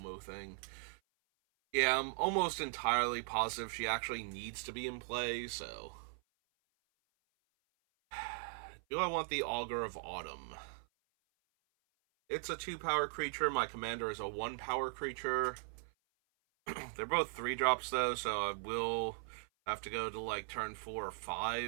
thing. Yeah, I'm almost entirely positive she actually needs to be in play, so... Do I want the Augur of Autumn? It's a 2-power creature. My commander is a 1-power creature. They're both 3-drops, though, so I will have to go to, like, turn 4 or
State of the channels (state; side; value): silent; left; 52 dB below the other